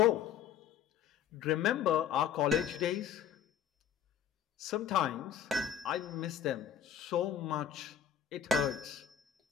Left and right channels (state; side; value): quieter; right; 8.9 dB